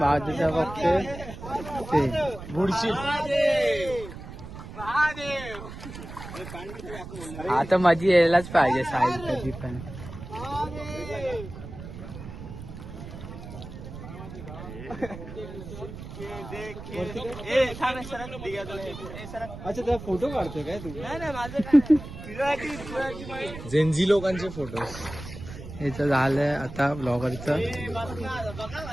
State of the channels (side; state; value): right; noise; rumble, 12 dB below the sound